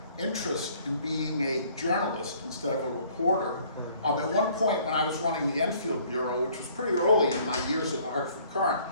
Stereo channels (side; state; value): both; inverted; correlation -0.59